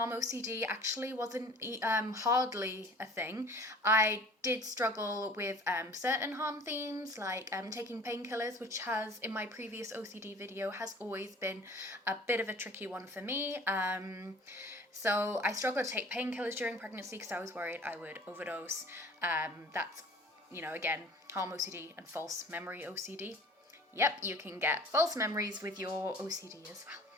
OCD actually wasn't hardly a thing. I did struggle with certain harm themes, like taking painkillers, which has, in my previous OCD video, has always been a bit of a tricky one for me. So I struggled to take painkillers during pregnancy because I was worried I would overdose. That's, again, harm OCD and false memory OCD. Yep, you can get false memories with your OCD as well.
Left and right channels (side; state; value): both; normal; correlation 0.46